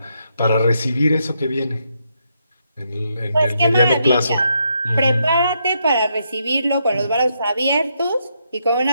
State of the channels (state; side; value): inverted; both; correlation -0.78